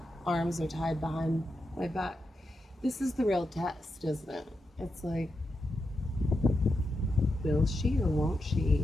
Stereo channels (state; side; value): normal; both; correlation 0.87